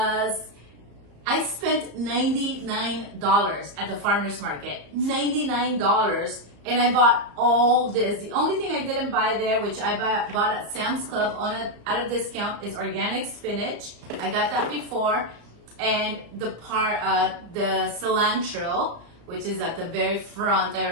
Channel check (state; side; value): late; left; 34 ms